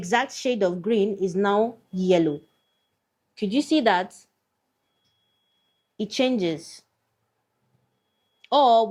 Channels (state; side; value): identical; both; correlation 1.00